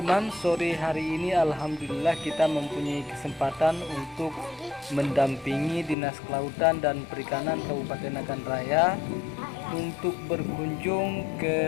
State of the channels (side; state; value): right; drops out; at 6.0 s